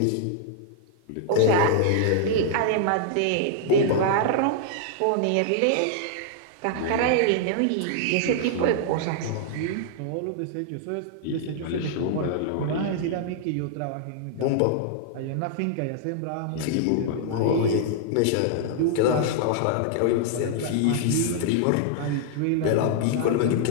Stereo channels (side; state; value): both; different; correlation -0.01